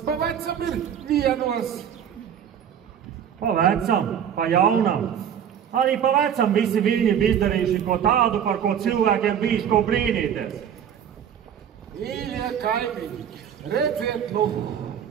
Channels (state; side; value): quieter; left; 8.9 dB